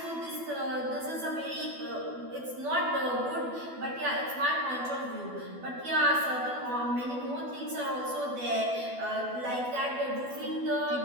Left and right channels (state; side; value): late; left; 12 ms